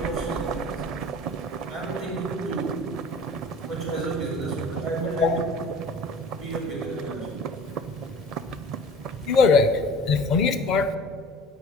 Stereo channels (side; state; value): both; normal; correlation 0.43